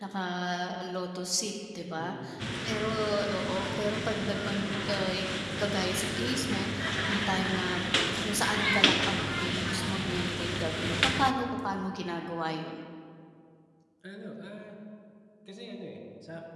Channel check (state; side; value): identical; both; correlation 1.00